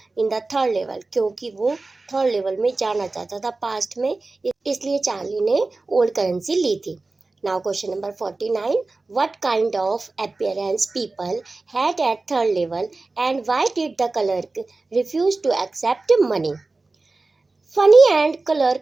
the third level, क्योंकि वो थर्ड लेवल में जाना चाहता था पास्ट में, इसलिए चार्ली ने ओल्ड करेंसी ली थी। Now question number 49, what kind of appearance people had at third level and why did the clerk refuse to accept money? Funny and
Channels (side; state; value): left; quieter; 3.5 dB